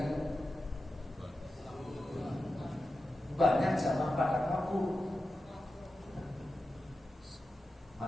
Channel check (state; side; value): normal; both; correlation 0.92